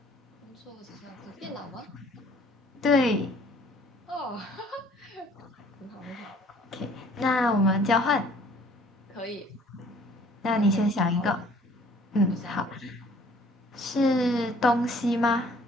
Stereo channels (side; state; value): both; normal; correlation 0.56